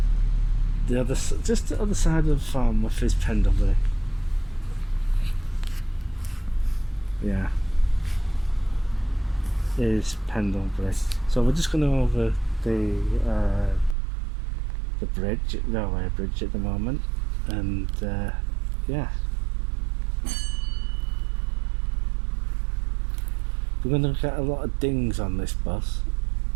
the other side of Farnworth is Pendlebury. Yeah, is Pendlebury. So we're just going over the railway bridge at the moment, and yeah, we're going to get a lot of dings on this bus,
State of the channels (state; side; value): drops out; left; at 14.0 s